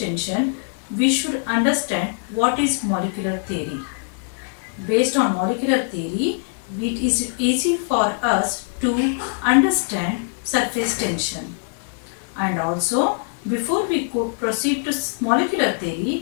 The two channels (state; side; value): silent; right; 64 dB below the other